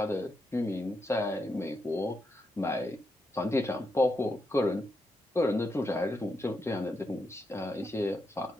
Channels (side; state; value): both; normal; correlation 0.83